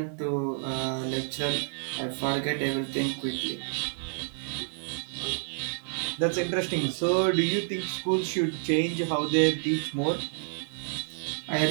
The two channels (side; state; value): left; silent; 58 dB below the other